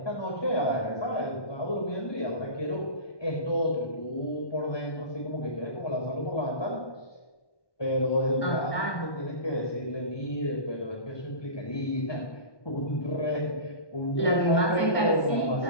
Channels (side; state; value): right; late; 1.2 ms